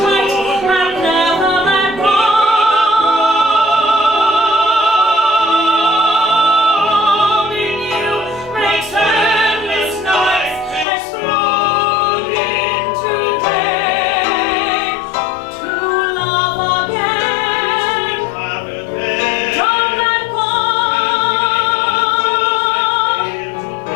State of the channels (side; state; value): right; drops out; at 10.9 s